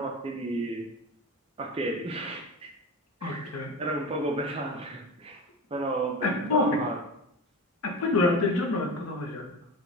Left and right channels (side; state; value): both; normal; correlation 0.28